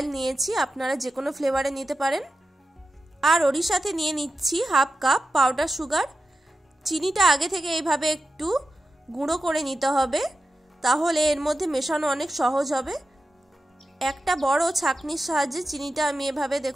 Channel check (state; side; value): normal; both; correlation 0.92